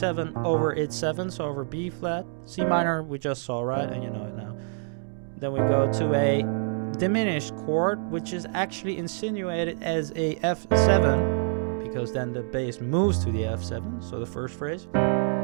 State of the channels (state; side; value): silent; left; 55 dB below the other